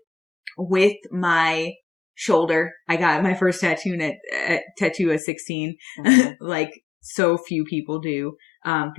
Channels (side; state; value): right; drops out; at 5.2 s